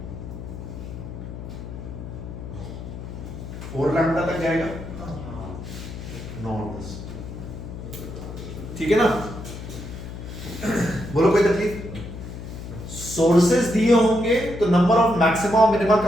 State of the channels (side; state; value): left; noise; hum, 10 dB below the sound